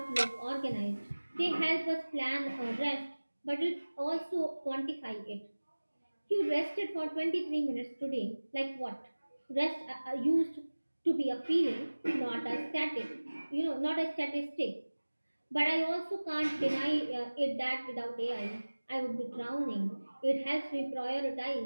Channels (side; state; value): both; inverted; correlation -1.00